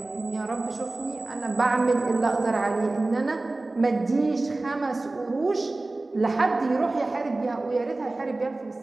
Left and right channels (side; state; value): left; quieter; 3.0 dB